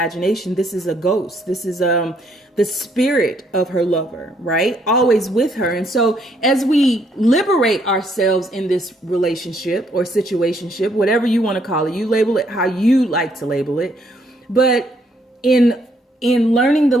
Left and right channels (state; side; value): normal; both; correlation 0.70